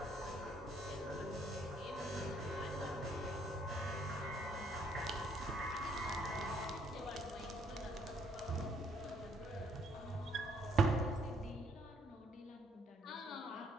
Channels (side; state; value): both; normal; correlation 0.67